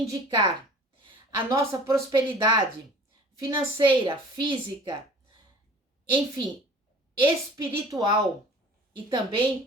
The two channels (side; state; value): both; normal; correlation 0.46